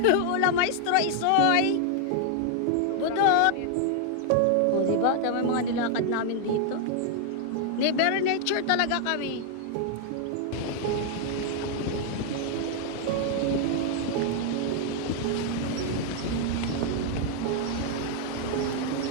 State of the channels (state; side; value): different; both; correlation 0.00